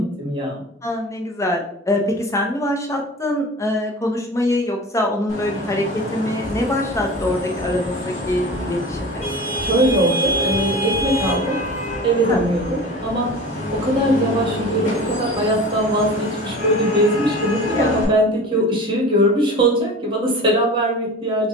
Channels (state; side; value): normal; both; correlation 0.36